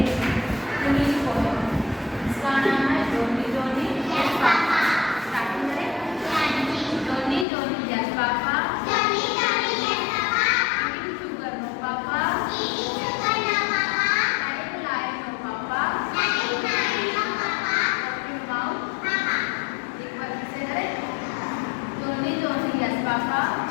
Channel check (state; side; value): drops out; right; at 7.5 s